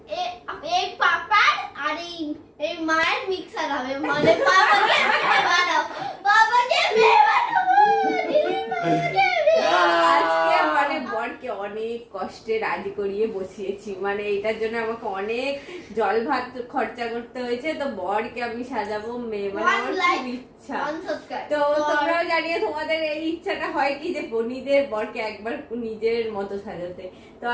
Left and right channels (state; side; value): identical; both; correlation 1.00